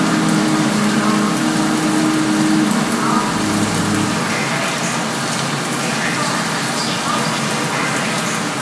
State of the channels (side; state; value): both; identical; correlation 1.00